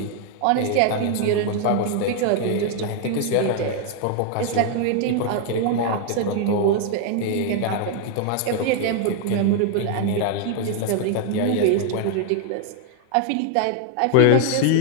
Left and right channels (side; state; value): both; different; correlation 0.00